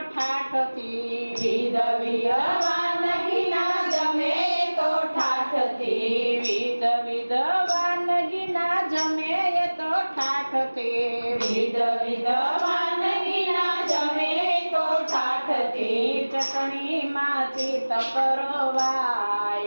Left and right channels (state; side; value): inverted; both; correlation -1.00